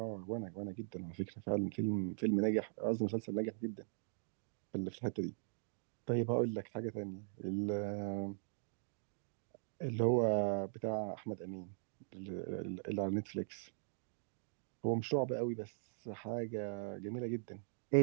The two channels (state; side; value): silent; left; digital silence